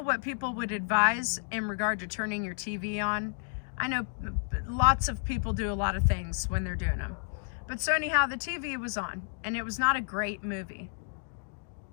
what people would advise in regard to turning your TV on. I know lots of people do a lot of things when they're doing them. But so anyhow, the TV was on, and it was not a great movie.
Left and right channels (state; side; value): silent; right; digital silence